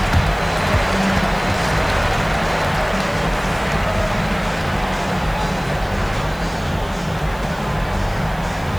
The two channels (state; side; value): noise; right; hiss, 23 dB below the sound